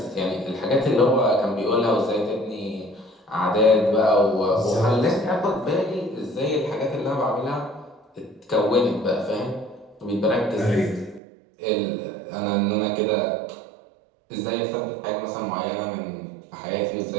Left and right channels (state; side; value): drops out; left; at 11.2 s